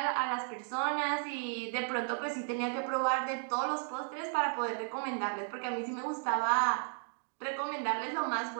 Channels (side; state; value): left; silent; 55 dB below the other